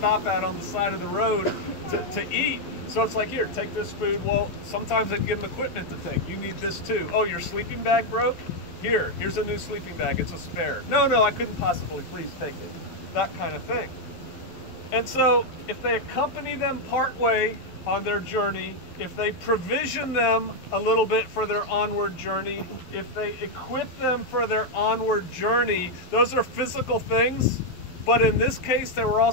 at on the side of the road to eat. So it's like, here, take this food. Well, sometimes they give them equipment to take. You need this too. Oh, your sleeping bag broke? Here's a new sleeping bag. It's a spare. No, I couldn't possibly. Please take it. That kind of thing. And so if they accompany them partway on their journey, if they provision them a little bit for their onward journey, if they equip them for their onward journey, those are physical things, but in this case, they were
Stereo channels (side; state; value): right; late; 11 ms